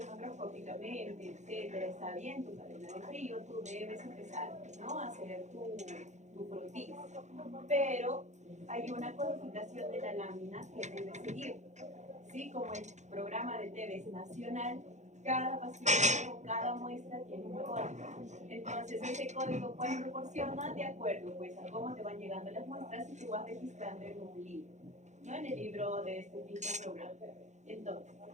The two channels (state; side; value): late; left; 0.34 ms